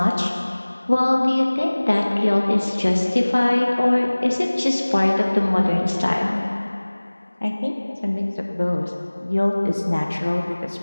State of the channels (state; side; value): inverted; both; correlation -1.00